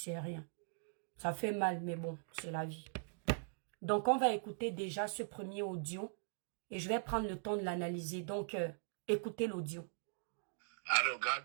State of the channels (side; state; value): left; silent; digital silence